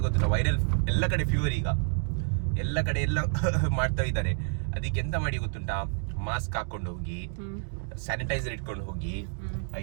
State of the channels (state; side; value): silent; left; digital silence